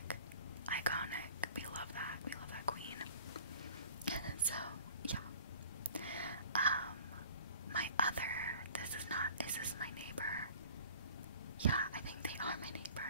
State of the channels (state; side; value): inverted; both; correlation -0.46